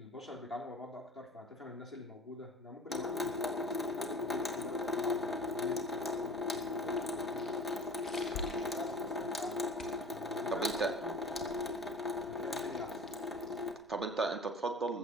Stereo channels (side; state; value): both; normal; correlation 0.41